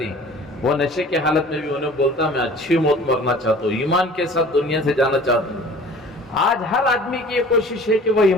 وہ نشے کی حالت میں بھی انہیں بولتا میں اچھی موت مرنا چاہتا ہوں، ایمان کے ساتھ دنیا سے جانا چاہتا ہوں. آج ہر آدمی کی یہ کوشش ہے کہ وہ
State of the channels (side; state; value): both; normal; correlation 0.46